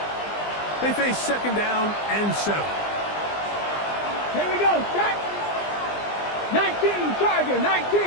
They face second down and 7. Here we go, set. 19 Chargers,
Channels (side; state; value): right; late; 20 ms